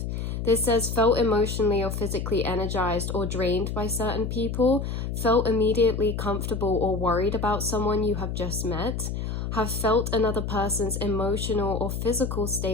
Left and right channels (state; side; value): noise; left; hum, 3 dB below the sound